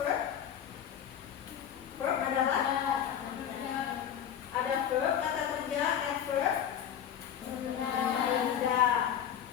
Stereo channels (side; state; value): right; quieter; 9.4 dB